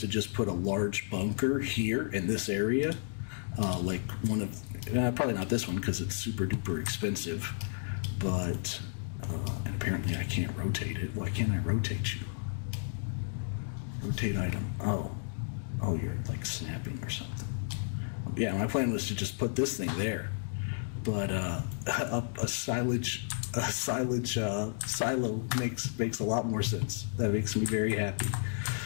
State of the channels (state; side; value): silent; right; digital silence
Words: just put a large bunker here in this area, like one of, probably not this one because it's super duper expensive, but, and apparently I can't rotate it. Why can't I rotate you? Rotate item. Oh, you're like snapping or something. Yeah, my plan was to just put this thing there, but a silage silo makes a lot more sense. That makes me very happy